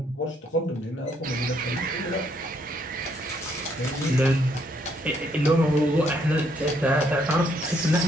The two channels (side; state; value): both; normal; correlation 0.71